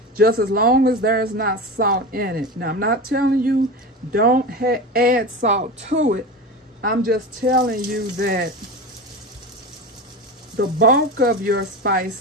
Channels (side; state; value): both; normal; correlation 0.26